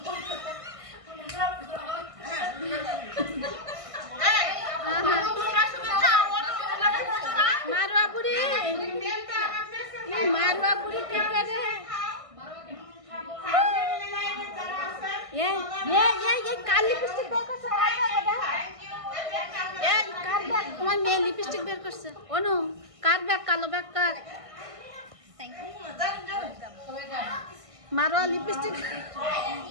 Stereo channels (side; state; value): left; late; 1.6 ms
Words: मारवा बुढ़ी क्या करे ये काली लिपस्टिक बेर करছে ये কার ব্যাগ তোমার মেয়ে লিপস্টিক বের করছে অনু কার ব্যাগ কালো ব্যাগ কার মারো লিপস্টিক